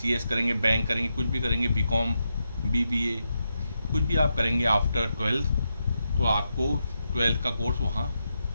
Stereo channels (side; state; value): both; inverted; correlation -0.85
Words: करेंगे, बैंक करेंगे, कुछ भी करेंगे, बीकॉम, बीबीए, कुछ भी आप करेंगे आफ्टर 12th, तो आपको 12th का कोर्स वहाँ